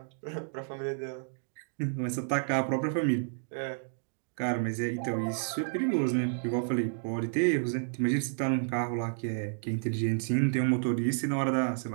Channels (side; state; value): left; silent; digital silence